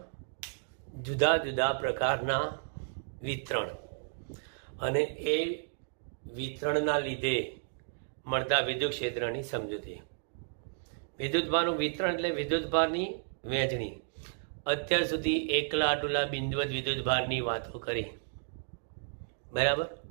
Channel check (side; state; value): left; silent; digital silence